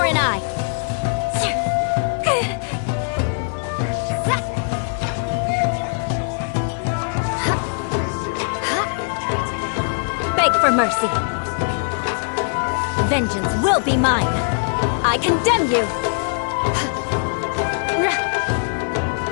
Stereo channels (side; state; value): right; silent; digital silence